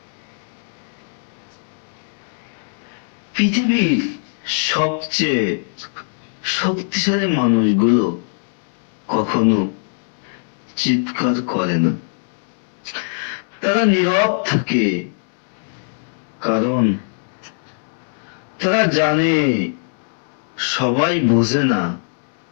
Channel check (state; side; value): silent; right; 65 dB below the other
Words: পৃথিবীর সবচেয়ে শক্তিশালী মানুষগুলো কখনো চিৎকার করে না, তারা নীরব থাকে, কারণ তারা জানে সবাই বোঝে না,